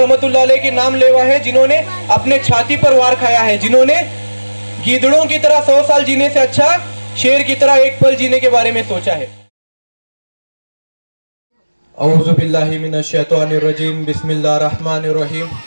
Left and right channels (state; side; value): inverted; both; correlation -1.00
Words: अलैह के नाम लेवा है जिन्होंने अपने छाती पर वार खाया है, जिन्होंने गीदड़ों की तरह 100 साल जीने से अच्छा शेर की तरह एक पल जीने के बारे में सोचा है। औज़ु बिल्लाहि मिनश शैतानिर रजीम, बिस्मिल्लाहिर रहमानिर रहीम।